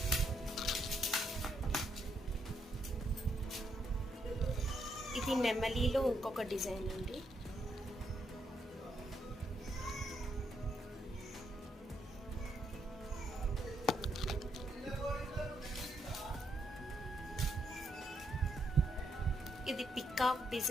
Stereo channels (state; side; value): normal; both; correlation 0.77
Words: ఇది నెమలిలో ఇంకొక డిజైన్ అండి. ఇది పికాక్